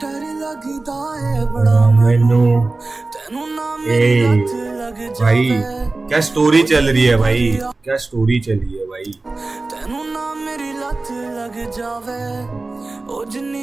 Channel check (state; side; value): quieter; left; 3.3 dB